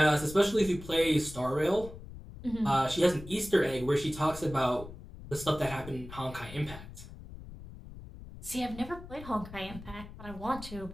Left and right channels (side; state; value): left; noise; rumble, 14 dB below the sound